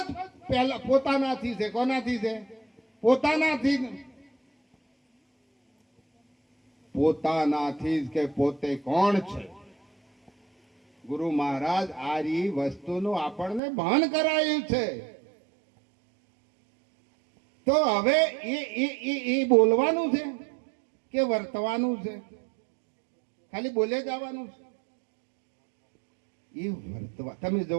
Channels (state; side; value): drops out; left; at 13.6 s